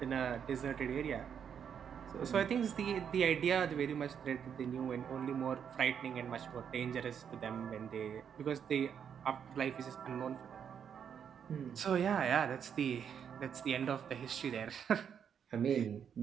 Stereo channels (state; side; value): quieter; left; 7.9 dB